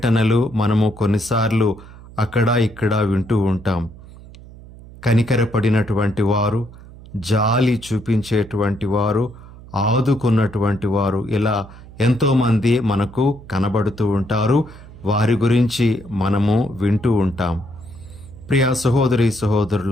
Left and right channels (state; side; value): noise; right; hum, 19 dB below the sound